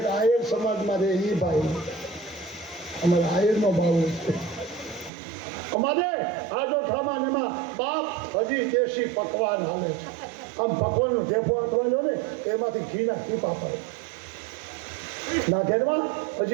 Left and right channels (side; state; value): left; drops out; at 5.1 s